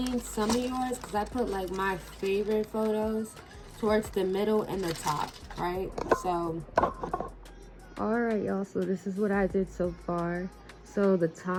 some of yours, because I put like my favorite photos towards the middle and the top, right? So all right, y'all, so this is what I did so far. So the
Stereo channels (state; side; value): identical; both; correlation 1.00